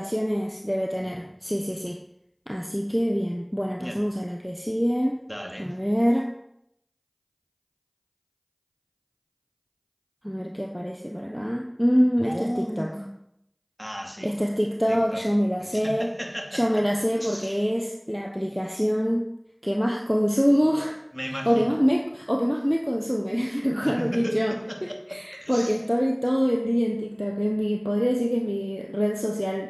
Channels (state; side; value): identical; both; correlation 1.00